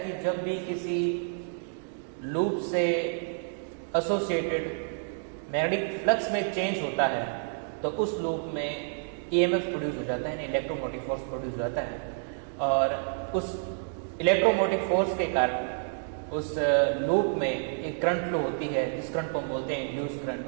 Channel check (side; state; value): left; silent; digital silence